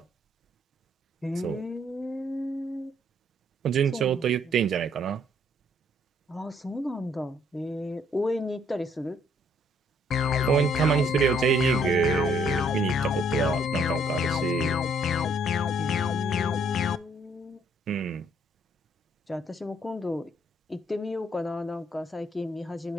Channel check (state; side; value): normal; both; correlation 0.66